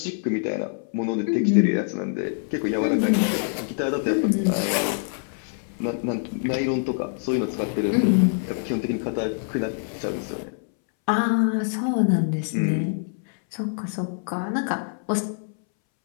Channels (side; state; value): right; silent; 62 dB below the other